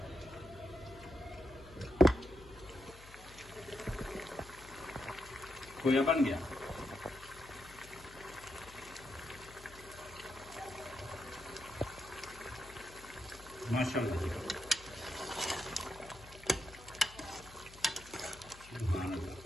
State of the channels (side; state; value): left; noise; hum, 18 dB below the sound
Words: खोया बन गया माशाल्लाह जी। सुभान अल्लाह।